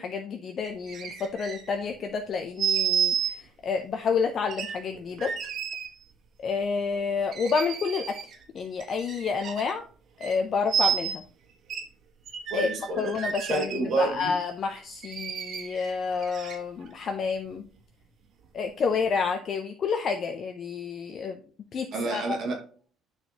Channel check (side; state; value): both; normal; correlation 0.64